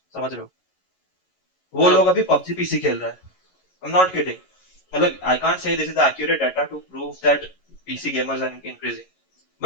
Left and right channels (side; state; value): right; late; 11 ms